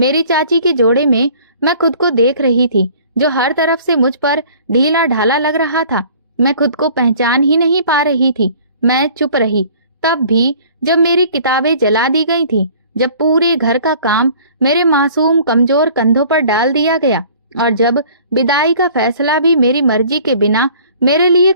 चाची के जोड़े में मैं खुद को देख रही थी, जो हर तरफ से मुझ पर ढीला ढाला लग रहा था। मैं खुद को पहचान ही नहीं पा रही थी। मैं चुप रही, तब भी जब मेरी किताबें जला दी गई थी, जब पूरे घर का काम मेरे मासूम कमजोर कंधों पर डाल दिया गया और जब विदाई का फैसला भी मेरी मर्जी के बिना मेरे लिए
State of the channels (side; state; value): both; inverted; correlation -0.51